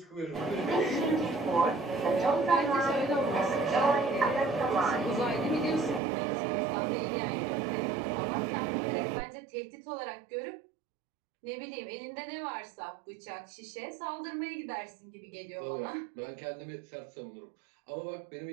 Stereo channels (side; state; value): left; drops out; at 6.0 s